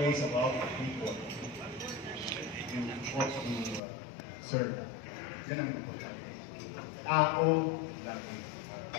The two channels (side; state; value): right; drops out; at 3.8 s